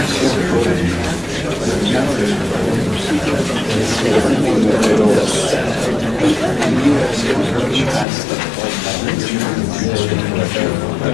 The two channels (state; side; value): drops out; right; at 8.1 s